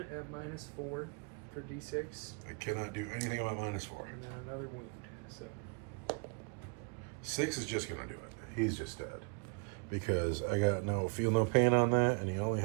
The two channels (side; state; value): left; quieter; 36.5 dB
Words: at -4 for D6. I cannot do anything about -4. And then another wound. So 6 is just gonna do it. He's just dead. Because I got feel no pain on that, and he only